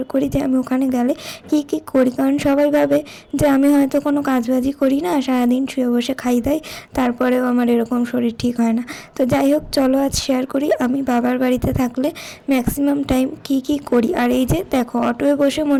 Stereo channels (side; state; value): both; identical; correlation 1.00